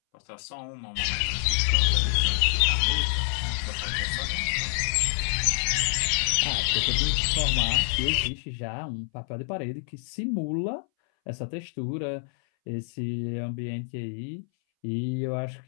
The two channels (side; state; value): right; silent; 60 dB below the other